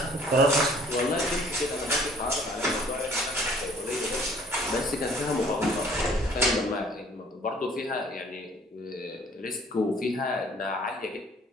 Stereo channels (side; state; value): both; normal; correlation 0.56